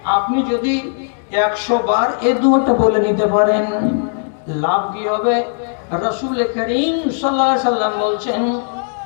আপনি যদি 100 বার এই দোয়াটা বলে নিতে পারেন, লাভ কি হবে? রাসূল করিম সাল্লাল্লাহু আলাইহি সাল্লাম বলছেন,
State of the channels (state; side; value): silent; right; digital silence